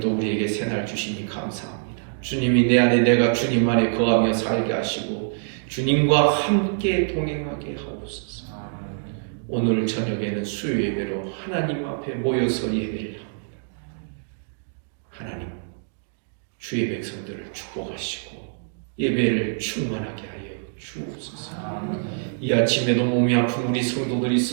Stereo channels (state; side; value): silent; left; digital silence